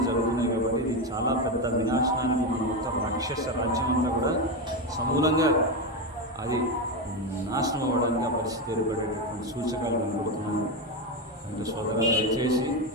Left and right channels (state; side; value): normal; both; correlation 0.12